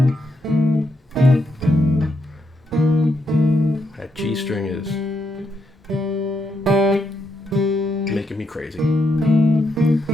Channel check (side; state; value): both; normal; correlation 0.79